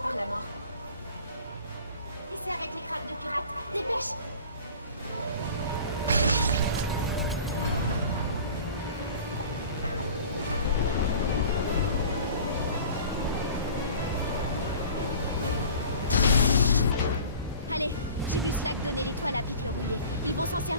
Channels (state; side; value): inverted; both; correlation -0.43